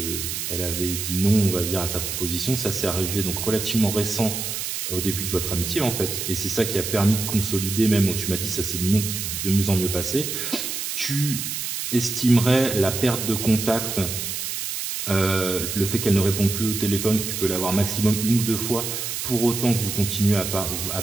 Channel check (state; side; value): noise; right; hiss, 4 dB below the sound